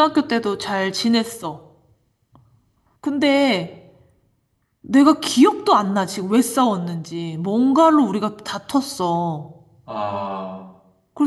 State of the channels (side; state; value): both; identical; correlation 1.00